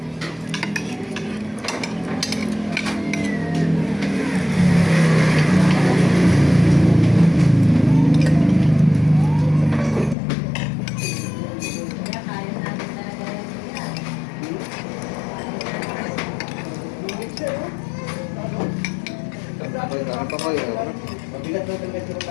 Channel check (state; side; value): drops out; right; at 10.2 s